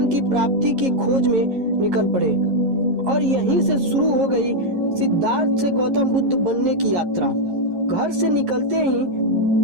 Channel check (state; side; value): late; left; 11 ms